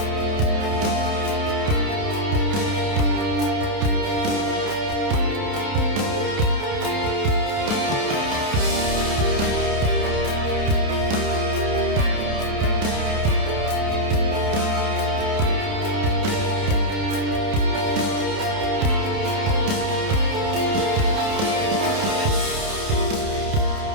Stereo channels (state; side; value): late; left; 29 ms